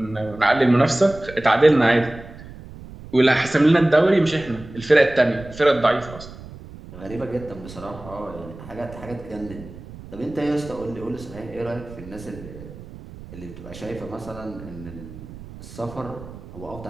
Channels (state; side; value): noise; right; rumble, 16 dB below the sound